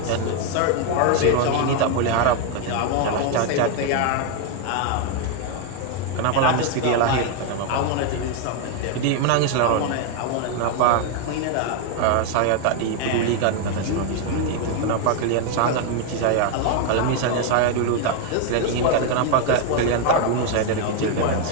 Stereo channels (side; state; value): both; different; correlation 0.01